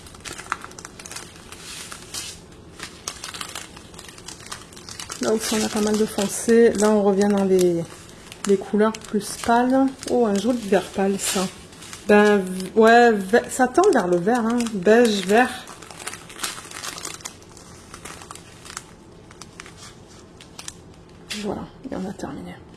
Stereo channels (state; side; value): identical; both; correlation 1.00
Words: Là aussi, on a pas mal de foncé. Là, on revient dans les couleurs plus pâles. Oh, un joli vert pâle, ça. Ben, ouais, ça tend vers le vert, hein. Beige, vert. Voilà, et on a terminé.